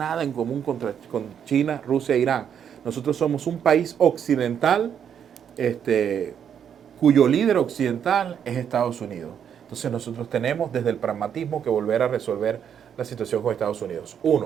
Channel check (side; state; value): left; quieter; 8.4 dB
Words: en común con China, Rusia e Irán. Nosotros somos un país occidental cuyo líder occidental es Estados Unidos. Entonces nosotros tenemos desde el pragmatismo que volver a resolver la situación con Estados Unidos.